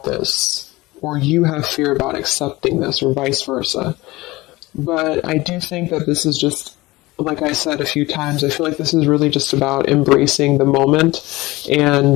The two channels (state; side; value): quieter; right; 20.2 dB